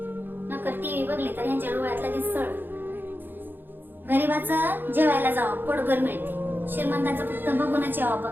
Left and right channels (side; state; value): left; late; 0.094 ms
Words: नकर टीव्ही बघली तर यांच्या डोळ्यात लगेच सळ. गरीबाचं जेवायला जावं पोटभर मिळते. श्रीमंताचं फक्त बघूनच यावा